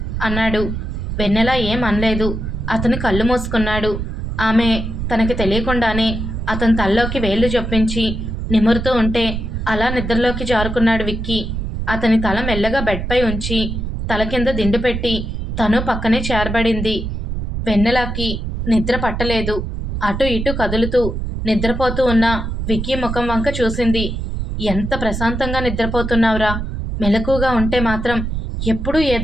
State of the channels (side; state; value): right; noise; rumble, 4 dB below the sound